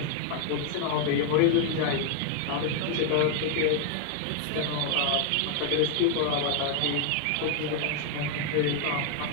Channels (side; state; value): both; different; correlation 0.00